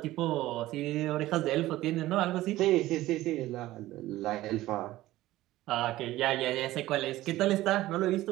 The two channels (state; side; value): quieter; left; 16.2 dB